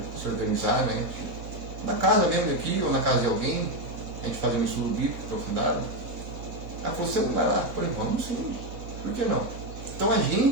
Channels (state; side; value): late; left; 3.2 ms